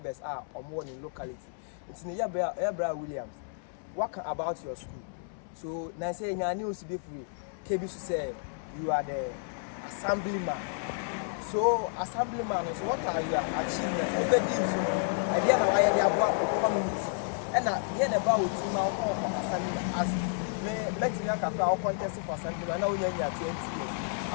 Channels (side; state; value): right; silent; 57 dB below the other